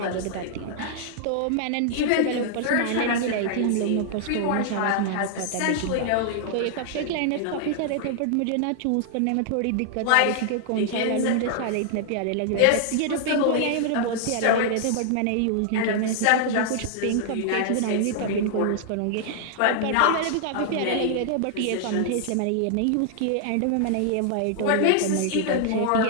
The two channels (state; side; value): different; both; correlation -0.01